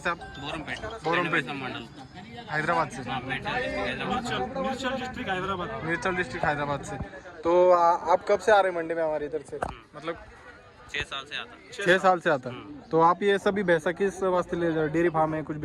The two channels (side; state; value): both; identical; correlation 1.00